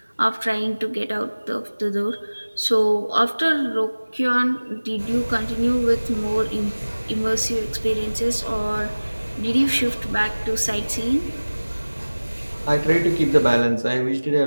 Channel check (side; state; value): both; inverted; correlation -1.00